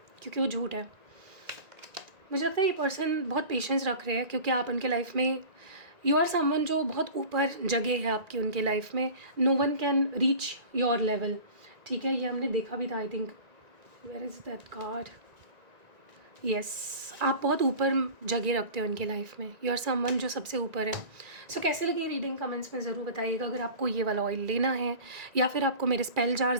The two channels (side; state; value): left; late; 1.9 ms